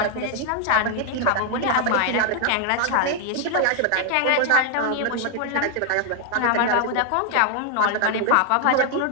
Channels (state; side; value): different; both; correlation 0.00